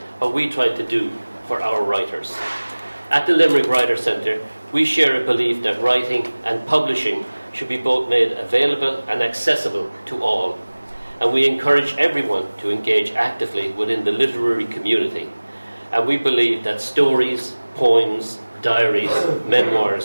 what we try to do for our writers. At the Limerick Writer Centre, we share a belief that writing and publishing should be both made available and accessible to all, and we encourage everyone to engage actively within the literary community. And we believe that stories, poems, diaries,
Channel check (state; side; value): inverted; both; correlation -1.00